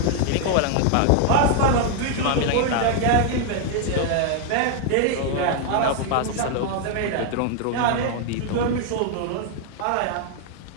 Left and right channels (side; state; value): both; different; correlation 0.00